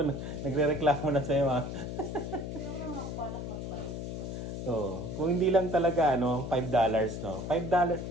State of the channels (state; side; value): noise; left; hum, 6 dB below the sound